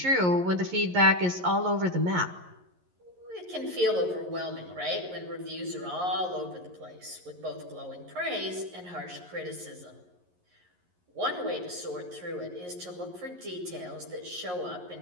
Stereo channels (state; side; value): late; left; 11 ms